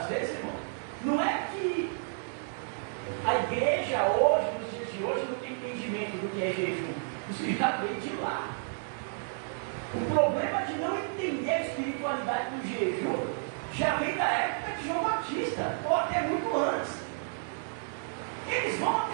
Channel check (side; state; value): left; silent; 57 dB below the other